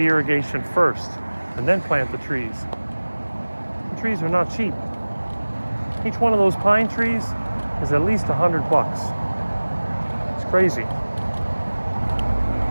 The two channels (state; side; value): inverted; both; correlation -1.00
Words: irrigation first and then plant the trees. The trees are not cheap. Each one of those pine trees is at least $100. It's crazy.